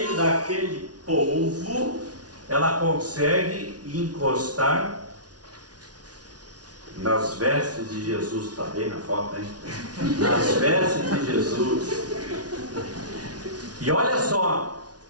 daquele povo, ela consegue encostar nas vestes de Jesus. Está bem na foto, hein? Nas vestes de Jesus. E olha só,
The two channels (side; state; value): left; late; 0.69 ms